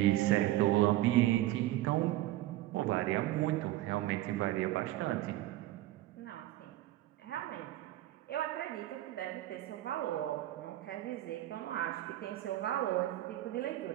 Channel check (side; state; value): left; quieter; 15.5 dB